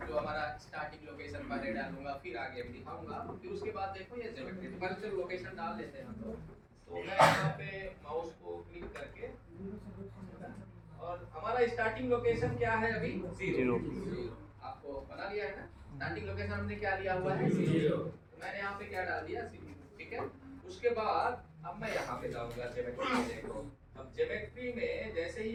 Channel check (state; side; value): identical; both; correlation 1.00